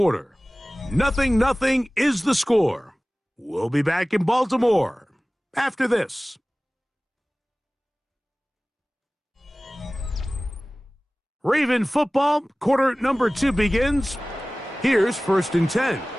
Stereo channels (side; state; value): both; normal; correlation 0.98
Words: 0-0 is the score. We'll be back in Baltimore after this. Raven football, quarter number 2 begins. Here's 1st and 10